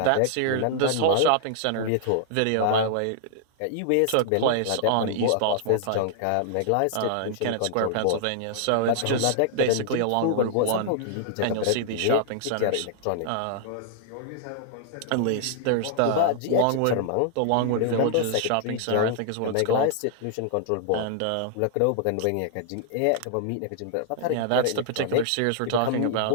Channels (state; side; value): different; both; correlation -0.01